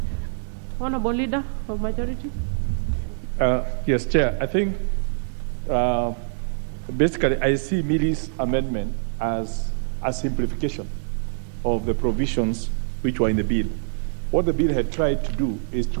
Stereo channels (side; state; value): left; silent; 62 dB below the other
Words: Honorable Leader of Majority. Yes, Chair. I think basically I see Millie's amendment as a simplification of the provisions which were in the bill. What the bill had tried to do is